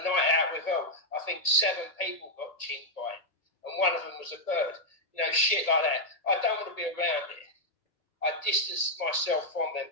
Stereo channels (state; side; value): late; right; 1.8 ms